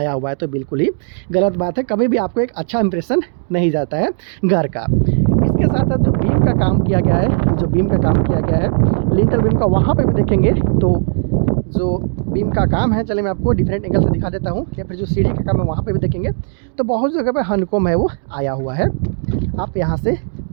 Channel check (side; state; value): left; silent; 68 dB below the other